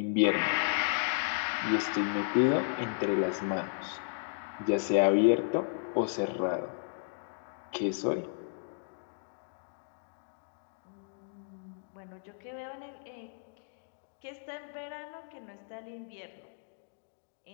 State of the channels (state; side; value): silent; right; digital silence